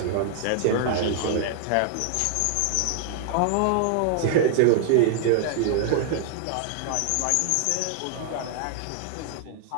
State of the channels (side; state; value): both; different; correlation 0.00